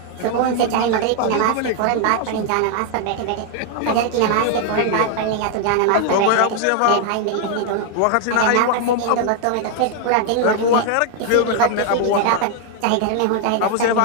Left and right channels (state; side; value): different; both; correlation 0.00